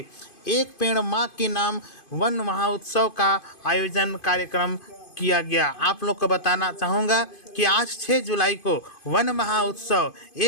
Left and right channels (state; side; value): late; right; 2.5 ms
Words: एक पेड़ मां के नाम वन महोत्सव का आयोजन कार्यक्रम किया गया। आप लोग को बताना चाहूँगा कि आज 6 जुलाई को वन महोत्सव